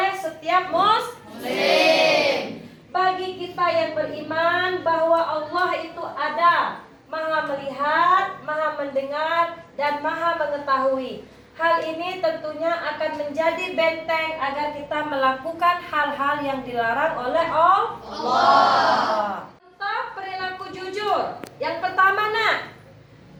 setiap muslim. Bagi kita yang beriman bahwa Allah itu ada, Maha melihat, Maha mendengar, dan Maha mengetahui. Hal ini tentunya akan menjadi benteng agar kita melakukan hal-hal yang dilarang oleh Allah. Tentang perilaku jujur. Yang pertama nak,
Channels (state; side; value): identical; both; correlation 1.00